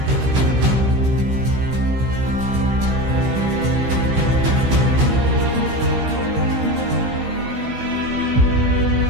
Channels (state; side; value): late; left; 16 ms